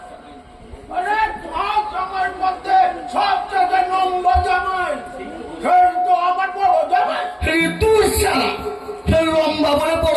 আরে সব জামাইয়ের মধ্যে সবচেয়ে নম্বর জামাই সেই তো আমার বড় জামাই। তুই শালা লম্বা বলে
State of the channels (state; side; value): identical; both; correlation 1.00